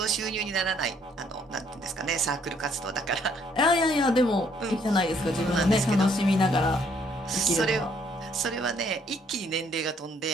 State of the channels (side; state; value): both; normal; correlation 0.66